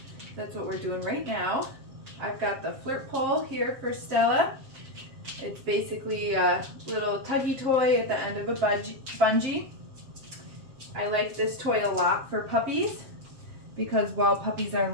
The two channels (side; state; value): left; late; 7.5 ms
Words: That's what we're doing right now. I've got the flirt pole here for Stella. It's basically a little tuggy toy at the end of a bungee. I like this toy a lot for puppies because while puppies are